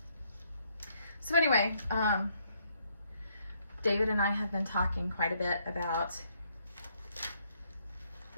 So anyway, David and I have been talking quite a bit about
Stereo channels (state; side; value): inverted; both; correlation -0.71